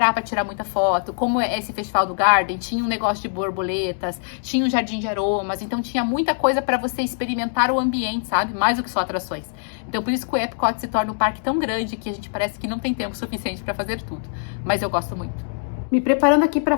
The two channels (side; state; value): right; silent; digital silence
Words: para tirar muita foto. Como é esse festival do Garden, tinha um negócio de borboletas, tinha um jardim de aromas, então tinha muita coisa para você experimentar o ambiente, sabe? Mais do que só atrações. Então por isso que o Epcot se torna um parque tão grande que a gente parece que não tem tempo suficiente para fazer tudo. Mas eu gosto muito. Me preparando aqui para